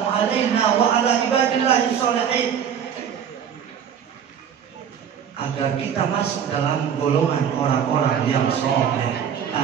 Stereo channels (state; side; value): quieter; left; 8.2 dB